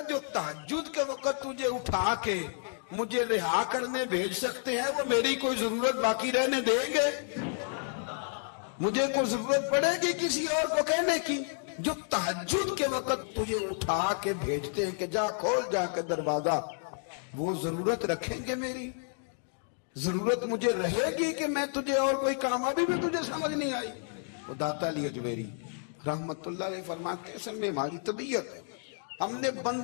جو تہجد کے وقت تجھے اٹھا کے مجھے رہا کرنے بھیج سکتے ہیں وہ میری کوئی ضرورت باقی رہنے دیں گے؟ مجھے کوئی ضرورت پڑے گی کسی اور کو کہنے کی؟ جو تہجد کے وقت تجھے اٹھا کے بھیجتے ہیں کہ جا کھول جا کے دروازہ، وہ ضرورت رکھیں گے؟ میری ضرورت مجھے رہے گی کہ میں تجھے اور کوئی کام؟ ابھی بھی تجھے سمجھ نہیں آئی؟ وہ داتا علی حجویری رحمت اللہ علیہ فرماتے ہیں اصل میں ہماری طبیعت ہے، ہم نے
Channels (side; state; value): right; silent; 57 dB below the other